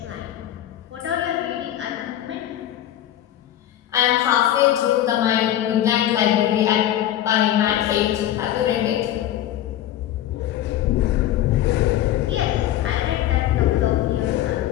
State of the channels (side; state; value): right; quieter; 12.3 dB